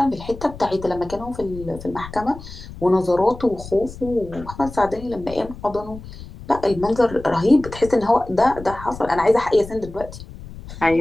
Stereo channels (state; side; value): noise; left; rumble, 14 dB below the sound